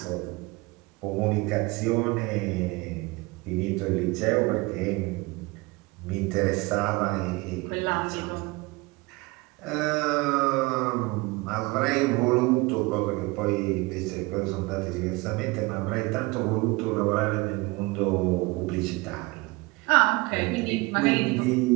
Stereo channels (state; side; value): quieter; left; 23.9 dB